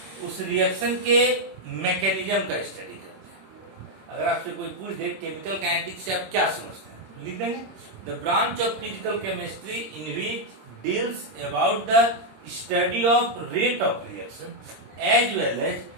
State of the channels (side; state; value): left; late; 26 ms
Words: उस रिएक्शन के मैकेनिज्म का स्टडी करते हैं। अगर आपसे कोई पूछ दे केमिकल काइनेटिक्स से आप क्या समझते हैं, लिख देंगे the branch of physical chemistry in which deals about the study of rate of reaction as well as